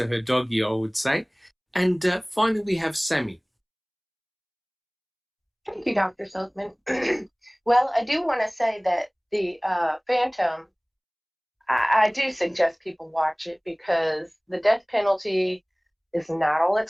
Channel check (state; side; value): identical; both; correlation 1.00